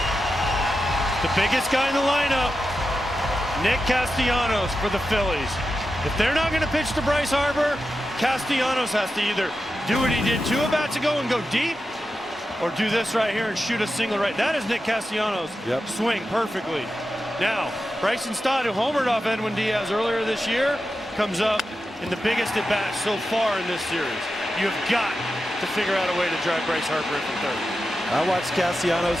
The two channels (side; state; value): both; normal; correlation 0.90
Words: The biggest guy in the lineup, Nick Castellanos for the Phillies. If they're not going to pitch to Bryce Harper, Castellanos has to either do what he did 2 at-bats ago and go deep, or do this right here and shoot a single right. That is Nick Castellanos. Yep. Swing perfectly. Now, Bryson Stott, who homered off Edwin Diaz earlier this year, comes up in the biggest at-bat so far in this series. You have got to figure out a way to drive Bryce Harper into third. I watched